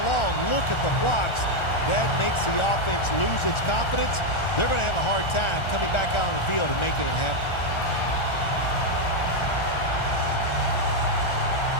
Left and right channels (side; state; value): right; late; 1.4 ms